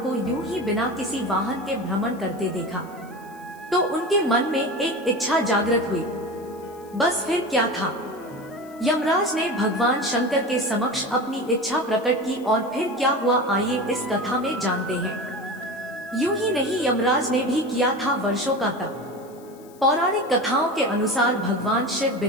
को यूं ही बिना किसी वाहन के भ्रमण करते देखा तो उनके मन में एक इच्छा जागृत हुई। बस फिर क्या था, यमराज ने भगवान शंकर के समक्ष अपनी इच्छा प्रकट की और फिर क्या हुआ आइए इस कथा में जानते हैं। यूं ही नहीं, यमराज ने भी किया था वर्षों का तप। पौराणिक कथाओं के अनुसार भगवान शिव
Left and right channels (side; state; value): left; noise; hiss, 26 dB below the sound